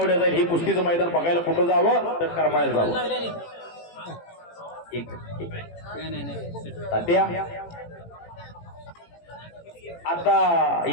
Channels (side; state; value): right; late; 18 ms